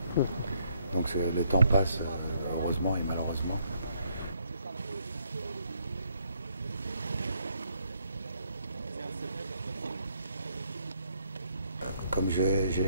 Donc le temps passe, heureusement et malheureusement. Comme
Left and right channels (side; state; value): both; inverted; correlation -0.71